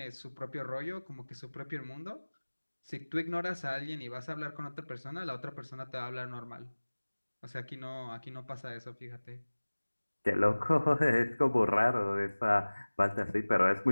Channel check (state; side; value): inverted; both; correlation -1.00